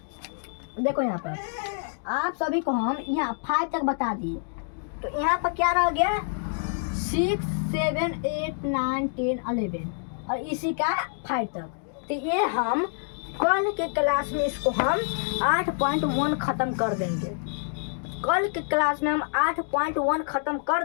देखो यहाँ पर आप सभी को हम यहाँ 5 तक बता दिए, तो यहाँ पर क्या रह गया 6 7 8 9 10 11 और इसी का 5 तक। तो ये हम कल के क्लास में इसको हम 8.1 ख़त्म कर देंगे, कल के क्लास में हम 8.1 ख़त्म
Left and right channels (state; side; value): silent; right; digital silence